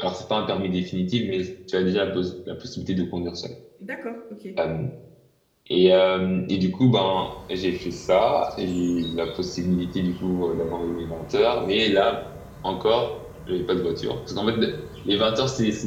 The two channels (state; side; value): identical; both; correlation 1.00